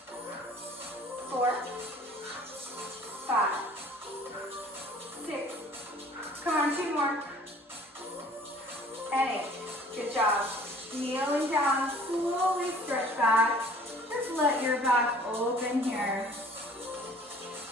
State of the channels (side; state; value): both; normal; correlation 0.51